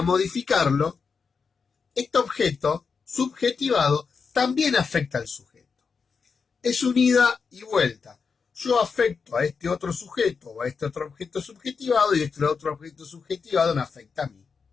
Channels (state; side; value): quieter; right; 5.4 dB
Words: modificarlo, este objeto subjetivado también afecta al sujeto. Es un ida y vuelta. Yo afecto a este otro sujeto o a este otro objeto subjetivado y este otro objeto subjetivado me afecta a mí.